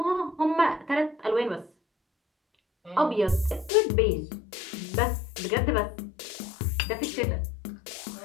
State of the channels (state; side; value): drops out; right; at 3.7 s